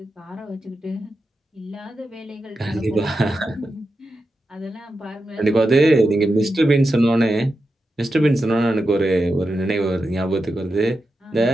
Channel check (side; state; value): both; normal; correlation 0.89